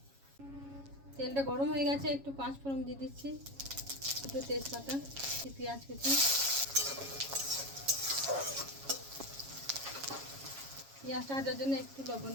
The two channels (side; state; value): left; late; 7.3 ms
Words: তেলটা গরম হয়ে গেছে, একটু 5 ফোড়ন দিয়ে দিচ্ছি, একটু তেজপাতা, পেঁয়াজ কুচি, পেঁয়াজটা ভাজার জন্য একটু লবণ